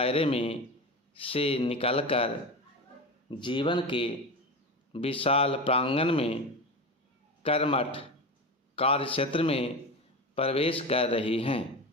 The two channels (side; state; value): both; normal; correlation 0.24